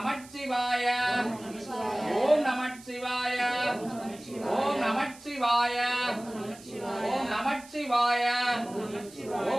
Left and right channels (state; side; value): noise; right; hiss, 20 dB below the sound